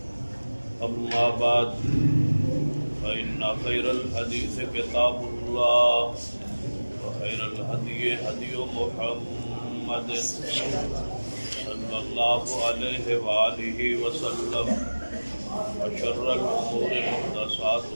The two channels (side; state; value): both; inverted; correlation -1.00